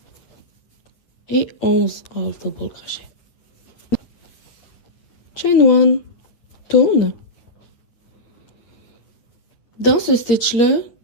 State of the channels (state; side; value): late; right; 8.7 ms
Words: Et 11 half double crochet. Chain 1, tourne. Dans ce stitch-là,